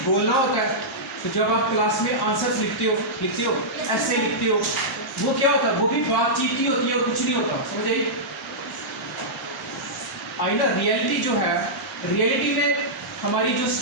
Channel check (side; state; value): both; normal; correlation -0.12